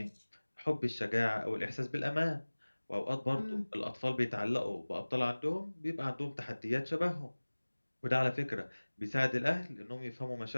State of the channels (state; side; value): inverted; both; correlation -1.00